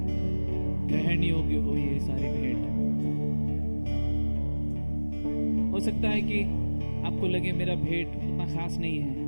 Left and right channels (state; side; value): inverted; both; correlation -1.00